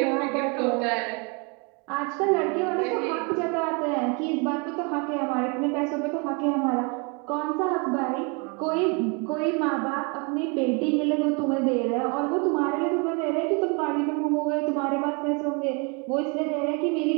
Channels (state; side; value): quieter; left; 32.8 dB